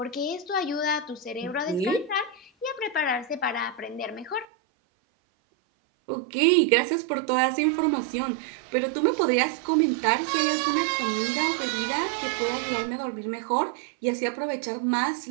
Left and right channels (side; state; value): left; drops out; at 4.5 s